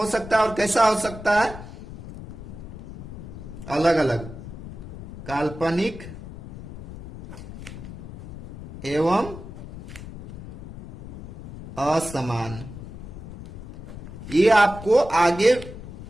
सकता है। और कैसा हो सकता है, अलग अलग, काल्पनिक एवं असमान। ये आपको आगे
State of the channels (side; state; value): left; noise; rumble, 13 dB below the sound